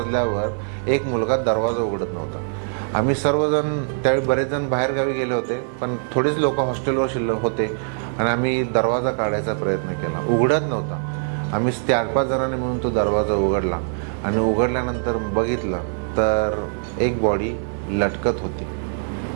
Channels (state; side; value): silent; left; 62 dB below the other